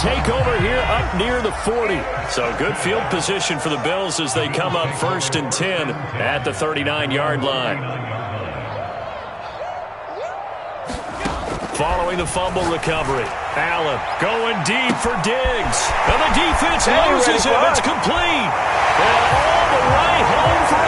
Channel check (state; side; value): identical; both; correlation 1.00